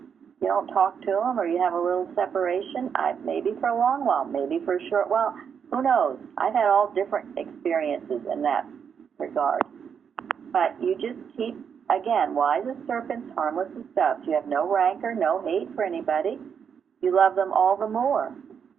don't talk to them, or you have a little separation. Maybe for a long while, maybe for a short while. Who knows? I've had all different experiences in that regard. But you just keep, again, wise as serpents, harmless as doves. You have no rancor, no hate for anybody. You love them all the more.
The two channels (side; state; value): left; quieter; 7.2 dB